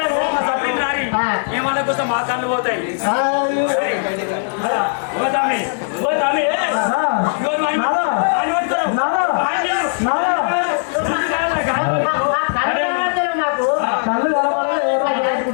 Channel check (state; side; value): silent; right; digital silence